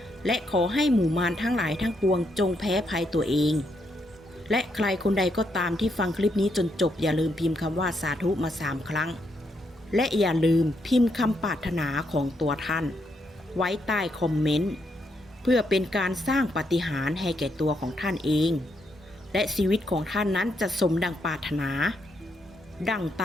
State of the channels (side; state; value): both; normal; correlation 0.78